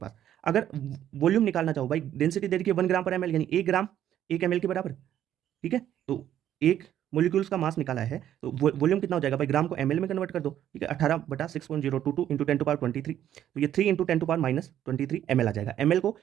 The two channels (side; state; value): left; quieter; 11.1 dB